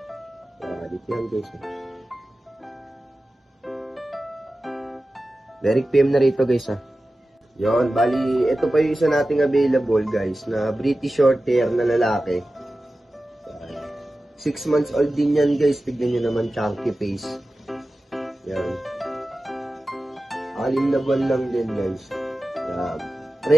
Quality yan guys. Derek PM na rito guys, ha. Yon, bali, ito pa yung isa nating available guys, na British short hair na lalaki. 6 months old din yan guys, tignan nyo naman, chunky face. Yan. 6 na buwan lang din guys. Yan.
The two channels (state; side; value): normal; both; correlation 0.95